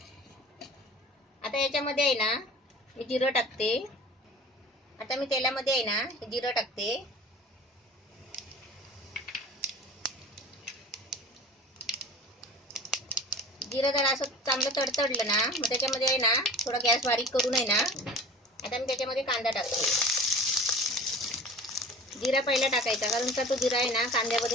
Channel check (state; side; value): normal; both; correlation 0.40